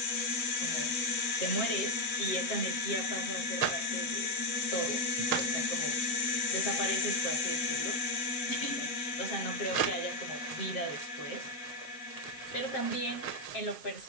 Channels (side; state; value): right; late; 7.3 ms